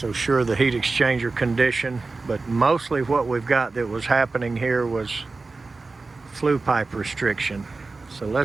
sure the heat exchanger condition, but mostly what we've got that was happening here was flue pipe restriction. So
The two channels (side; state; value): left; quieter; 3.8 dB